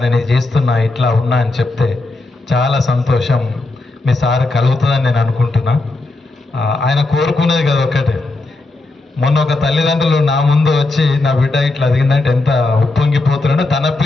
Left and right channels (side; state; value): right; quieter; 3.1 dB